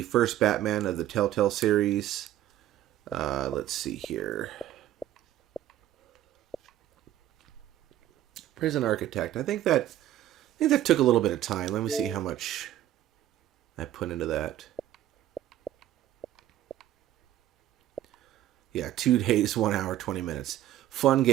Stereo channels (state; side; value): quieter; left; 12.8 dB